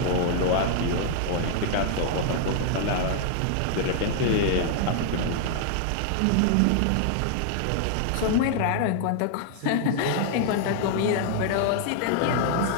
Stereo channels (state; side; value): different; both; correlation -0.01